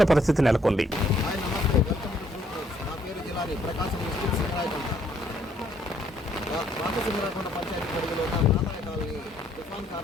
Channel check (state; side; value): normal; both; correlation 0.67